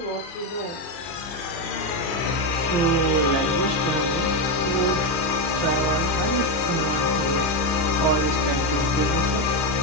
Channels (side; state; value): right; late; 30 ms